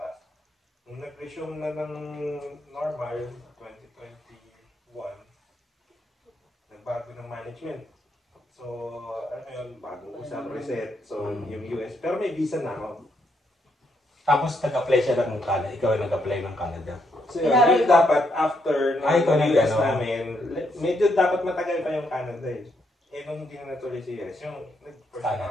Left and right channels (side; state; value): both; normal; correlation 0.76